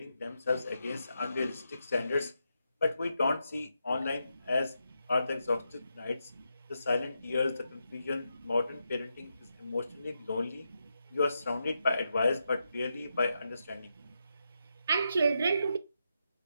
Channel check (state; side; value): inverted; both; correlation -0.85